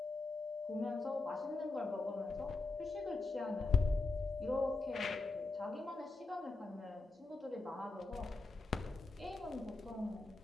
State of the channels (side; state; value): right; quieter; 3.5 dB